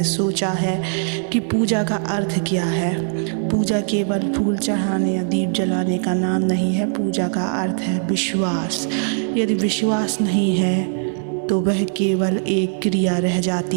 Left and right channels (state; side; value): silent; left; digital silence